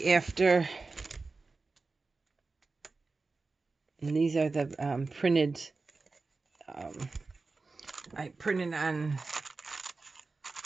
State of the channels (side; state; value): left; quieter; 3.9 dB